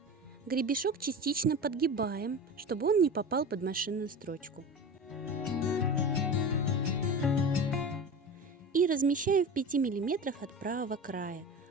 Гребешок частично подгибаем, чтобы он не попал под машинную строчку. И размещаем в 5 мм от правого края,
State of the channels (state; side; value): normal; both; correlation 0.30